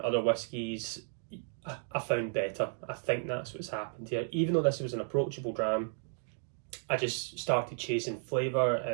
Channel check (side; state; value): left; silent; 55 dB below the other